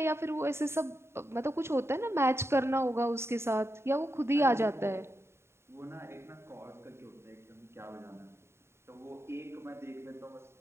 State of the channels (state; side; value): late; left; 0.12 ms